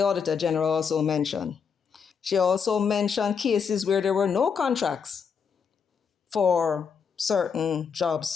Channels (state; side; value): quieter; right; 6.4 dB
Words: General also mentioned. She also mentioned cases where there were no contracts for certain